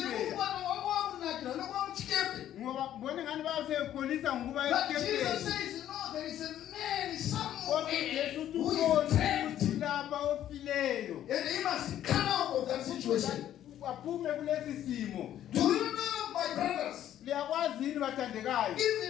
Ngikubona wakwamnakila nokwamchikepe. Ngoba mbone ngani bayasekholisa ngokuba But Jesus esikepeni. says, no, there is a man Kodwa somewhere uJesu who ukhona is trapped. ukuthi lapha ofileyo. And he must come out of that situation. Aphume kulesi simo. Do you know, my brothers, Liyakwazi yini bathandekayo?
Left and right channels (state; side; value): quieter; right; 11.5 dB